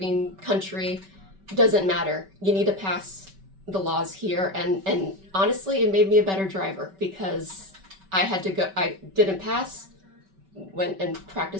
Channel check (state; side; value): late; left; 5.2 ms